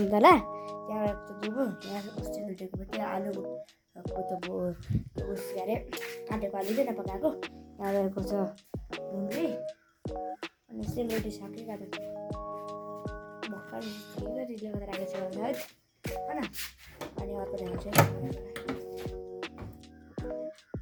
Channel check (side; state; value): both; identical; correlation 1.00